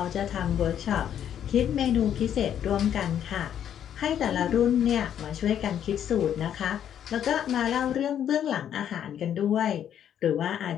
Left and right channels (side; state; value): right; quieter; 9.7 dB